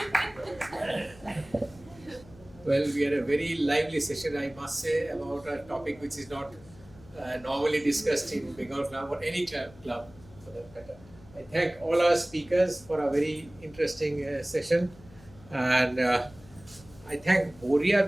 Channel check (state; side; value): noise; left; hum, 22 dB below the sound